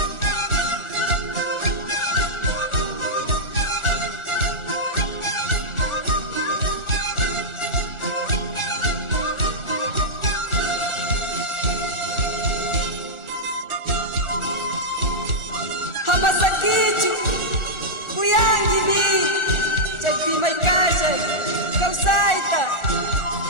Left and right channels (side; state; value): right; late; 1.4 ms